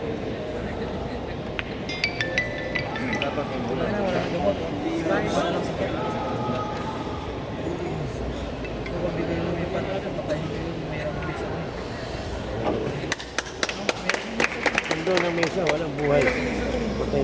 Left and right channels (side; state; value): both; identical; correlation 1.00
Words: dapat yung Wala na, wala na gamot. Wala lang sakit. Kung bigay mo yung patrata, patayin ko yung mayroong bisa mo. Doon ang mesa, walang buhay. Patay